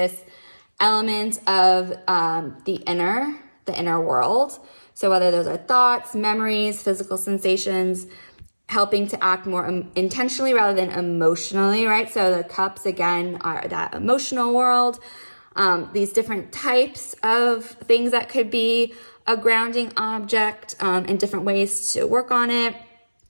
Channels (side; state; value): both; inverted; correlation -1.00